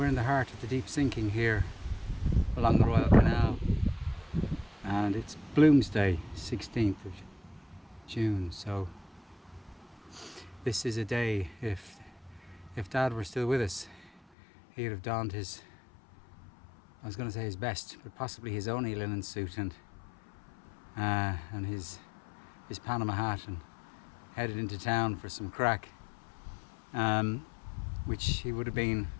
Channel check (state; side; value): drops out; right; at 14.2 s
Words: in the heart of the deep sinking here along the Royal Canal, and it's Bloomsday, 16th of June, so this is a day, if Dad were still with us, he'd have donned his, I was going to say his best, but possibly his only linen suit and his Panama hat, and headed into town for some crack, which he would have been